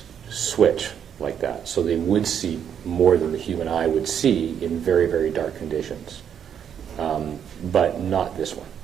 switch like that, so they would see more than the human eye would see in very, very dark conditions, but not this one.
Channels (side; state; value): left; quieter; 8.5 dB